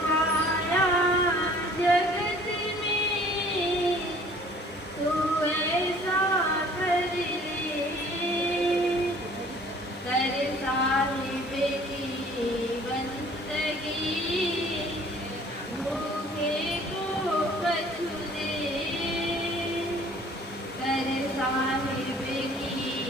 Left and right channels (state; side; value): normal; both; correlation 0.53